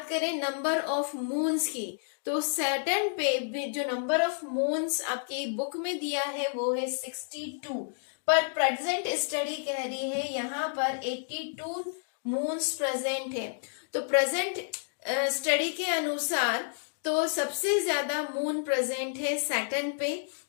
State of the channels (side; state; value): right; silent; digital silence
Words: करें नंबर ऑफ मून्स की तो सैटर्न पे जो नंबर ऑफ मून्स आपकी बुक में दिया है वो है 62, पर प्रेजेंट स्टडी कह रही है यहाँ पर 82 मून्स प्रेजेंट है। तो प्रेजेंट स्टडी के अनुसार तो सबसे ज्यादा मून प्रेजेंट है सैटर्न पे,